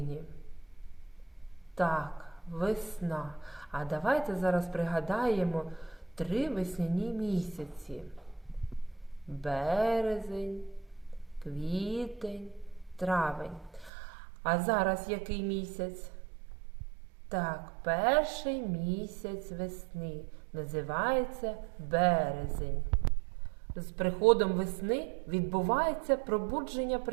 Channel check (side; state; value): left; drops out; at 13.9 s